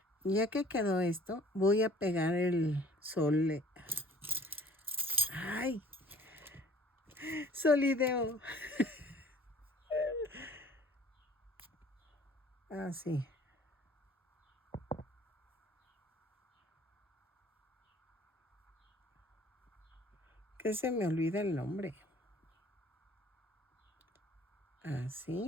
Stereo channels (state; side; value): normal; both; correlation 0.52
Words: ya que quedó esto, voy a pegar el sol. ¡Ay! Solideo. Así. Que se me olvida el nombre.